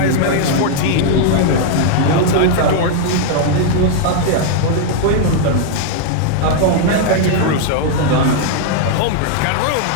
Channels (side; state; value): both; different; correlation 0.00